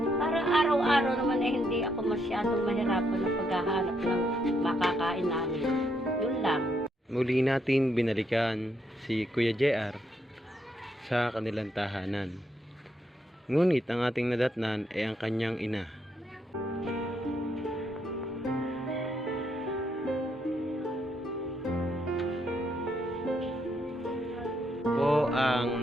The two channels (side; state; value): both; normal; correlation 0.76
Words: para araw-araw naman ay hindi ako masyadong mahirapan ng paghahanap ng makakain namin. Yun lang. Muli natin binalikan si Kuya JR sa kanilang tahanan. Ngunit ang ating nadatnan ay ang kanyang ina. Po